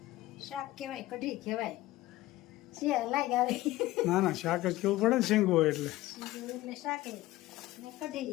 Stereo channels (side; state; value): right; quieter; 17.1 dB